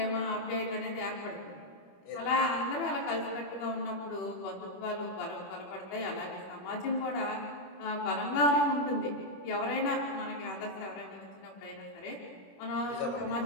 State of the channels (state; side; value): late; right; 21 ms